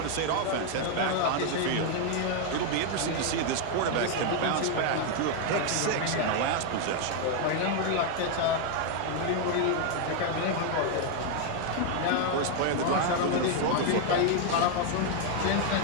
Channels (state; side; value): different; both; correlation 0.01